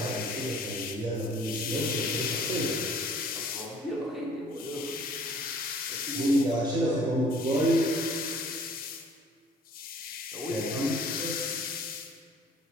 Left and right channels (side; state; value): both; normal; correlation 0.53